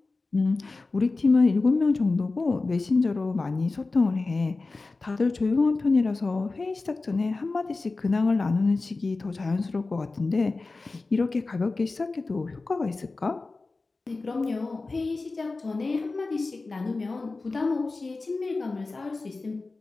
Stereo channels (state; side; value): quieter; right; 3.6 dB